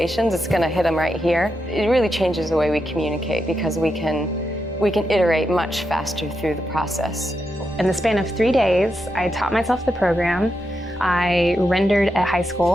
it's going to hit them right here. It really changes the way we communicate because we can iterate much faster through the process. In the span of 3 days, I taught myself the program, I rendered at high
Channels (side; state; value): both; normal; correlation 0.85